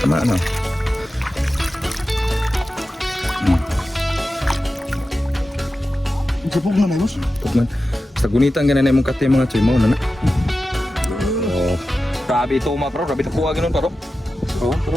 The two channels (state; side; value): normal; both; correlation 0.93